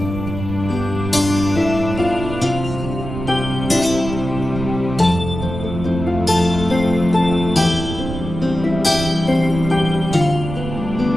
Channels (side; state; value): right; noise; rumble, 7 dB below the sound